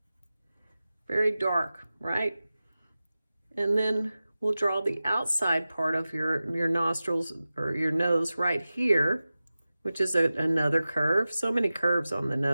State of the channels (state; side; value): inverted; both; correlation -0.95